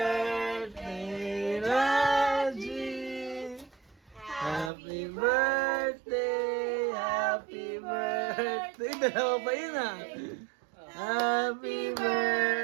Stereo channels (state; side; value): drops out; left; at 4.7 s